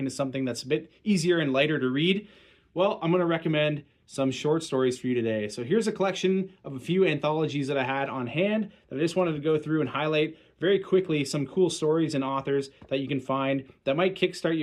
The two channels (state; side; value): identical; both; correlation 1.00